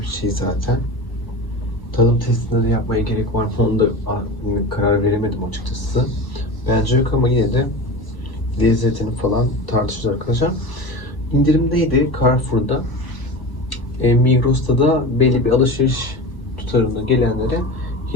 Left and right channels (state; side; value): late; right; 1.0 ms